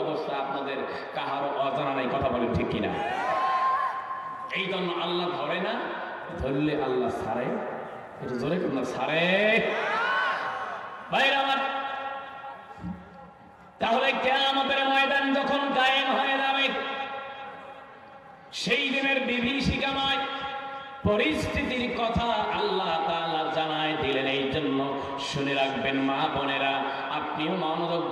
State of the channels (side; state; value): both; identical; correlation 1.00